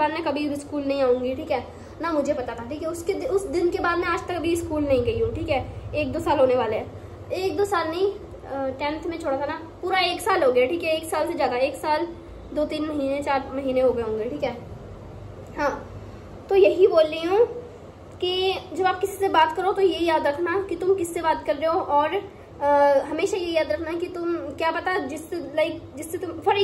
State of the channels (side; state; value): both; identical; correlation 1.00